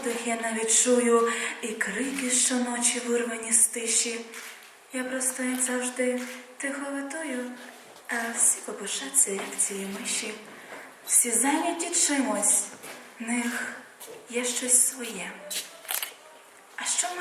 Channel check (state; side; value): identical; both; correlation 1.00